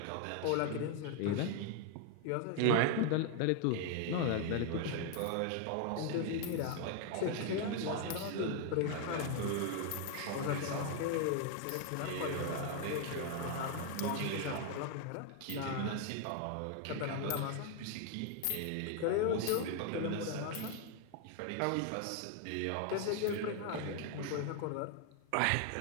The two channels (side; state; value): both; different; correlation 0.00